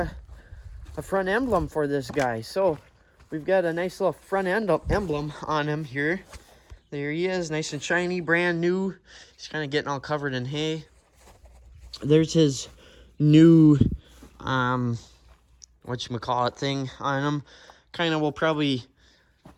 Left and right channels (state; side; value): identical; both; correlation 1.00